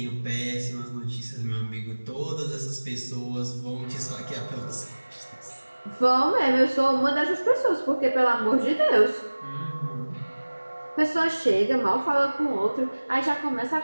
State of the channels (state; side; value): inverted; both; correlation -1.00